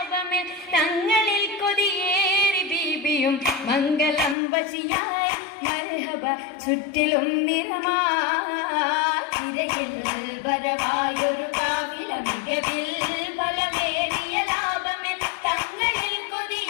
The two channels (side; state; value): right; drops out; at 4.4 s